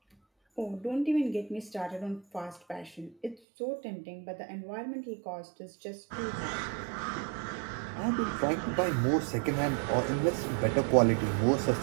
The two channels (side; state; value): left; drops out; at 3.4 s